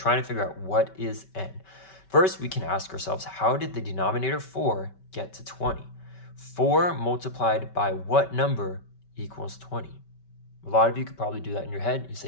to figure out what is n. First, we can ask ourselves, how did the denominator 4 get to 20? 4 multiplied by what number equals 20? A lot of you could probably do that in your head. You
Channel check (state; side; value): late; right; 5.2 ms